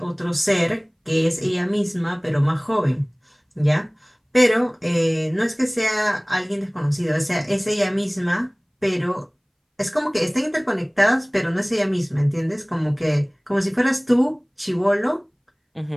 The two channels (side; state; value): both; identical; correlation 1.00